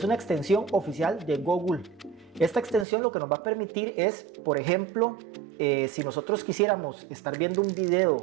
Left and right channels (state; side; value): drops out; left; at 2.9 s